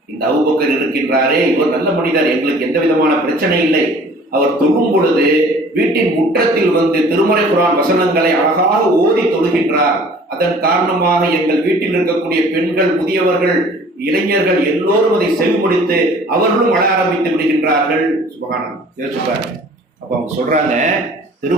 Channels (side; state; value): both; normal; correlation 0.50